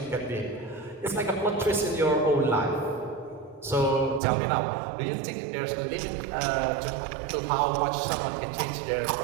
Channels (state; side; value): drops out; left; at 4.2 s